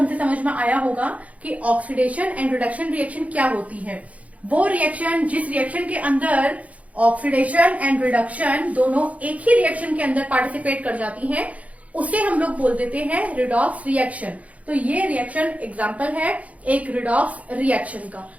से समझ में आया होगा कि ऑक्सीडेशन एंड रिडक्शन रिएक्शन क्या होती है। वो रिएक्शन जिस रिएक्शन के अंदर ऑक्सीडेशन एंड रिडक्शन दोनों एक ही रिएक्शन के अंदर पार्टिसिपेट कर जाती हैं उसे हम लोग बोल देते हैं रिडॉक्स रिएक्शन। तो ये रिएक्शन एग्जाम्पल है एक रिडॉक्स रिएक्शन का।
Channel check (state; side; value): late; left; 0.068 ms